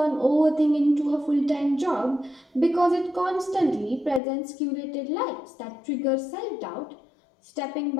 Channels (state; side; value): drops out; right; at 4.2 s